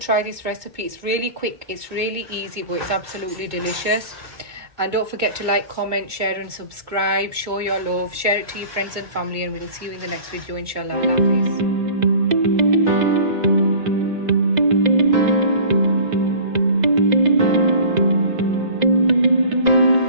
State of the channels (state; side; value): late; left; 2.3 ms